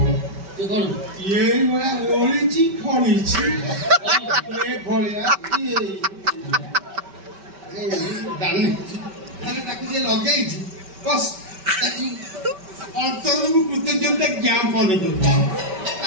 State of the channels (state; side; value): late; left; 5.2 ms